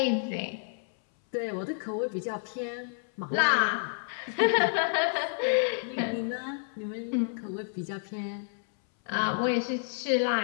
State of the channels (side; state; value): right; silent; 58 dB below the other